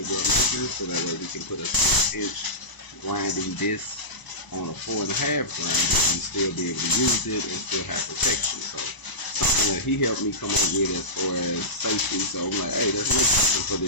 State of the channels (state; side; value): late; right; 1.0 ms